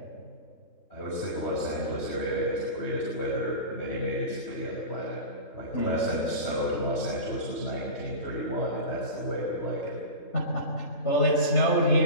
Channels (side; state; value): right; late; 3.3 ms